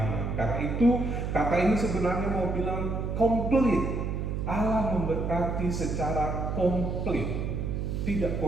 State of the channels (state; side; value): noise; right; hum, 2 dB below the sound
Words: Karena itu kata ini sebenarnya mau bilang complete. Allah memberkati secara komplit, tidak